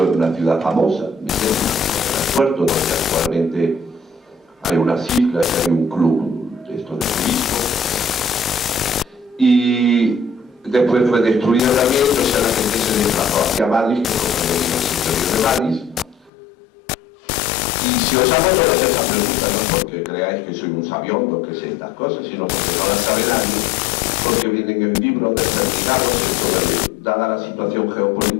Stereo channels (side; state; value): right; drops out; at 16.3 s